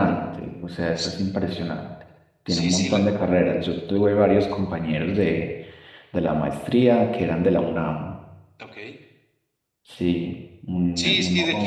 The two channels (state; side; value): identical; both; correlation 1.00